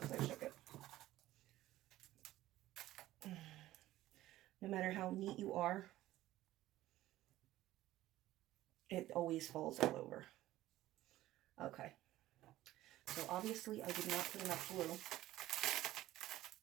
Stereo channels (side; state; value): left; quieter; 15.2 dB